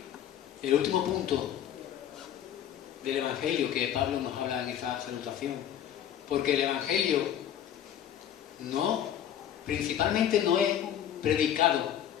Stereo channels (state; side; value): quieter; right; 10.2 dB